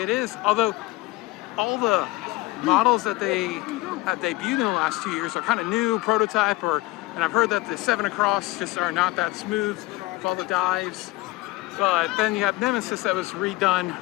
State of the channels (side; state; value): right; quieter; 21.1 dB